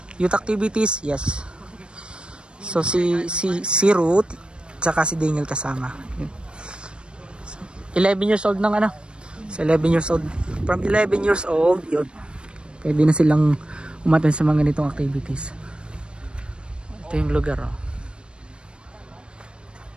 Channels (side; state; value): left; late; 0.055 ms